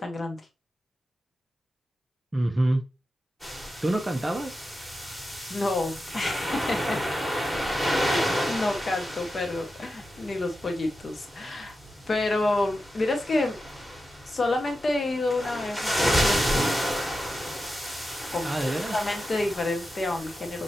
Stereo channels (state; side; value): normal; both; correlation 0.91